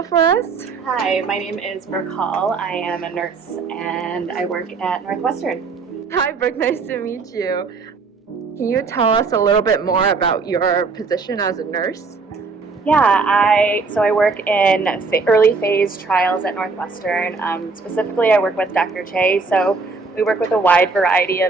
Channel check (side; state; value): left; quieter; 4.3 dB